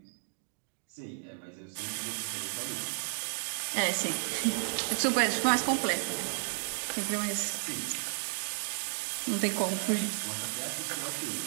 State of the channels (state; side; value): silent; left; digital silence